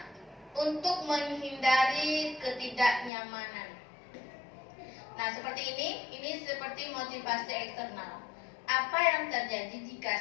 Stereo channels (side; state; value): right; drops out; at 3.1 s